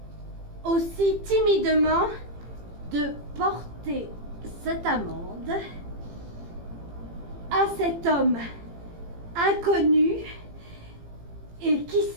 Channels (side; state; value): left; late; 18 ms